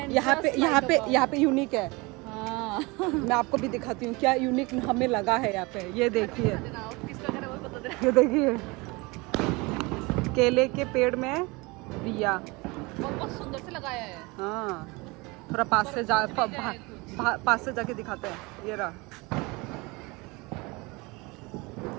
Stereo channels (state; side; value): quieter; left; 25.3 dB